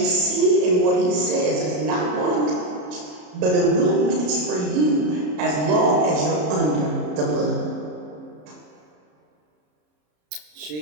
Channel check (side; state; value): left; late; 33 ms